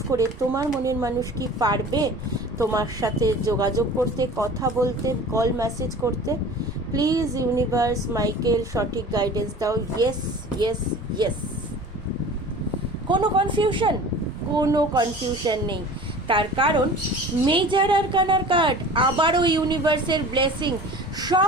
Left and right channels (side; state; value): both; normal; correlation 0.41